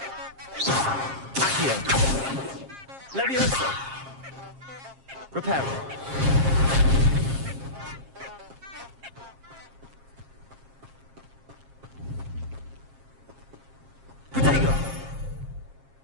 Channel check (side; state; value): left; late; 7.5 ms